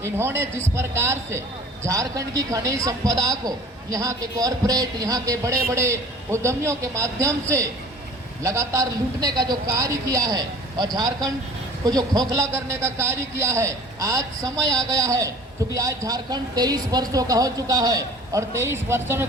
इन्होंने जिस प्रकार से झारखंड की खनिज संपदा को यहाँ के कॉरपोरेट, यहाँ के बड़े बड़े उद्यमियों के माध्यम से लगातार लूटने का जो कार्य किया है और झारखंड को जो खोखला करने का कार्य किया है, आज समय आ गया है क्योंकि आज झारखंड 23 वर्षों का हो चुका है और 23 वर्षों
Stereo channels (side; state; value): both; normal; correlation 0.46